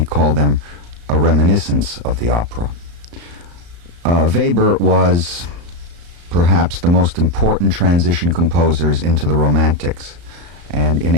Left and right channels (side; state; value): left; late; 34 ms